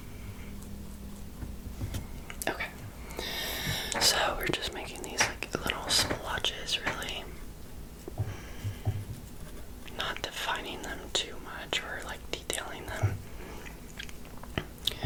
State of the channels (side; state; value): both; identical; correlation 1.00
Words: Okay, so we're just making these like little splotches, really. Not defining them too much or like detailing them.